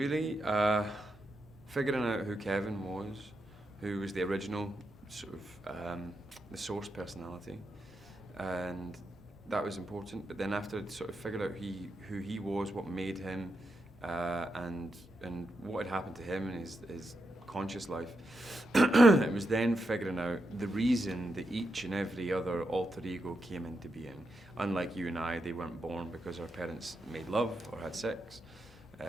figuring out who Kevin was, who was the original sort of the source personality, and that was important. But then after I'd sort of figured out who he was, what made him, and what had happened to him in his conscious life, it was then figuring out the reason that each and every other alter ego came into being. Unlike you and I, they weren't born because our parents made love or had sex.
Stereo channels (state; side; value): normal; both; correlation 0.85